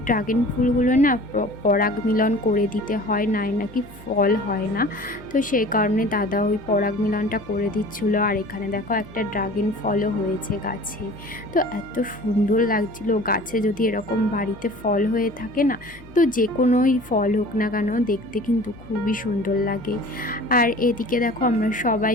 ড্রাগন ফুলগুলো না পরাগ মিলন করে দিতে হয়, নাকি ফল হয় না। তো সেই কারণে দাদা ওই পরাগ মিলনটা করে দিচ্ছিলো। আর এখানে দেখো একটা ড্রাগন ফলও হয়েছে গাছে। তো এত সুন্দর লাগছিল, গাছে যদি এরকম বাড়িতে ফল হয়ে থাকে না, তো যে কোনোই ফল হোক না কেন দেখতে কিন্তু খুবই সুন্দর লাগে। আর এদিকে দেখো আমরা সবাই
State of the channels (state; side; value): noise; left; hum, 21 dB below the sound